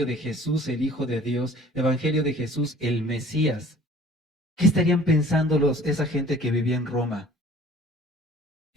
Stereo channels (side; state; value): both; normal; correlation 0.50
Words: de Jesús, el Hijo de Dios, evangelio de Jesús, el Mesías, ¿qué estarían pensando esa gente que vivía en Roma?